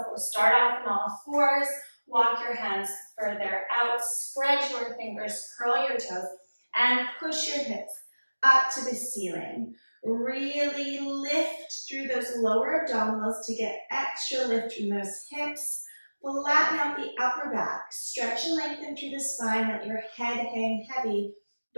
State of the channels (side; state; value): both; inverted; correlation -1.00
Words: we'll start off on all fours, walk your hands further out, spread your fingers, curl your toes, and push your hips up to the ceiling. Really lift through those lower abdominals to get extra lift from those hips. Flatten out the upper back. Stretch and lengthen through the spine. Let your head hang heavy